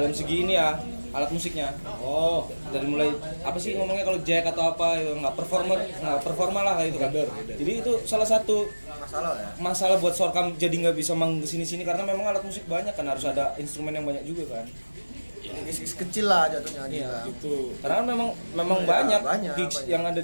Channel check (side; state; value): both; inverted; correlation -1.00